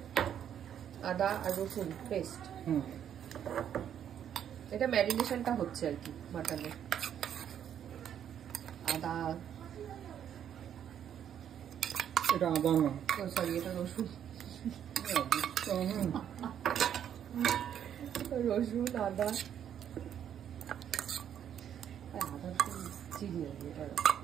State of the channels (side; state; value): left; quieter; 9.4 dB